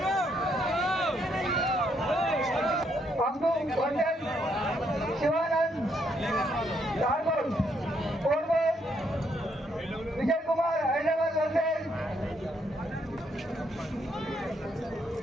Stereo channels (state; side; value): normal; both; correlation 0.73